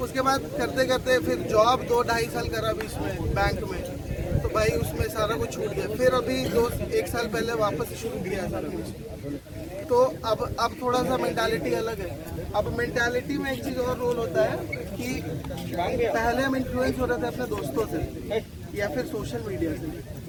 उसके बाद करते करते फिर जॉब 2-2.5 साल करा बीच में बैंक में, तो भाई उसमें सारा कुछ छूट गया। फिर अभी 1 साल पहले वापस शुरू किया सारा कुछ। तो अब थोड़ा सा मेंटालिटी अलग है। अब मेंटालिटी में एक चीज़ और रोल होता है कि पहले हम इन्फ्लुएंस हो रहे थे अपने दोस्तों से या फिर सोशल मीडिया से,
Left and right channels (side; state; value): both; identical; correlation 1.00